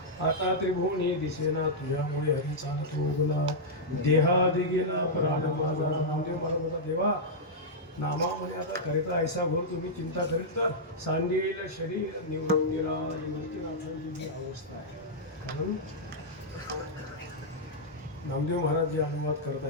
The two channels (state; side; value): normal; both; correlation -0.08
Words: आता त्रिभुवनी दिसेना तुझ्यामुळे हरी चालतो उगला देहादी गेला प्राण माझा नामदेव मला बोला देवा नामामध्ये आता करिता ऐसा भर तुम्ही चिंता करील तर सांगेल शरीर निवृत्तीला निवृत्तीनाथांची जी अवस्था आहे कारण नामदेव महाराज जे अनुवाद करत